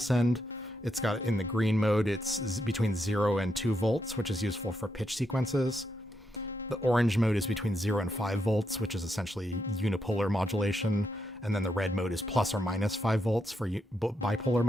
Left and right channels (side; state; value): both; normal; correlation 0.81